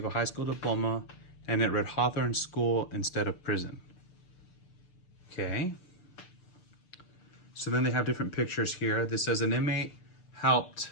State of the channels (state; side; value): late; right; 6.7 ms